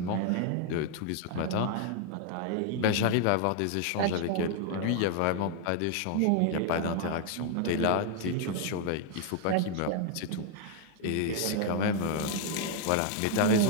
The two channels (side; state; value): both; different; correlation 0.00